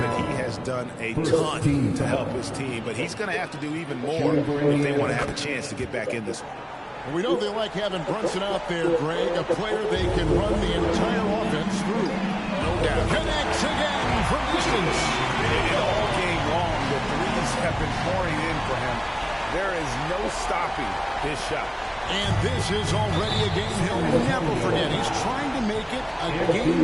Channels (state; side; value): identical; both; correlation 1.00